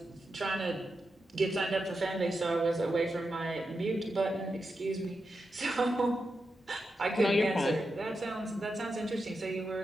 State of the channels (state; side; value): normal; both; correlation 0.88